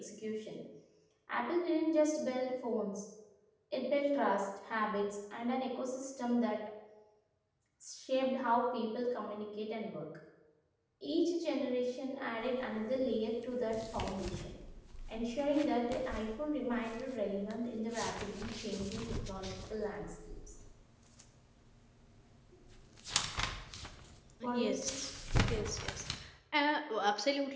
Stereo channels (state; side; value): identical; both; correlation 1.00